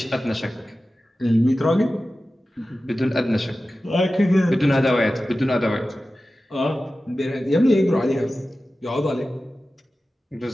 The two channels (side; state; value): both; normal; correlation 0.94